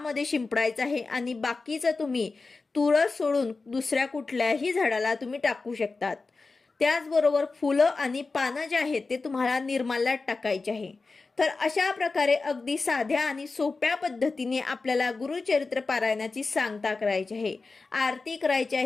शिंपडायचं आहे आणि बाकीचं तुम्ही तुळस सोडून दुसऱ्या कुठल्याही झाडाला तुम्ही टाकू शकतात. त्याचबरोबर फुलं आणि पानं जे आहेत ते तुम्हाला निर्माल्यात टाकायचे आहे. तर अशा प्रकारे अगदी साध्या आणि सोप्या पद्धतीने आपल्याला गुरुचरित्र पारायणाची सांगता करायची आहे, आरती करायची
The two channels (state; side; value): quieter; right; 3.9 dB